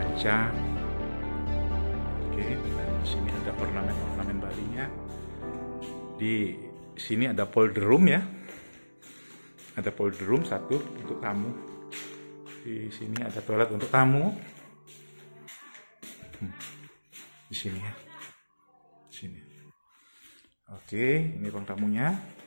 Oke, dan di sini ada ornamen Balinya. Di sini ada polder room ya. Ada powder room satu untuk tamu. Di sini ada toilet untuk tamu. Di sini ya. Di sini. Oke, ini ruang tamunya.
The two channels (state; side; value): inverted; both; correlation -1.00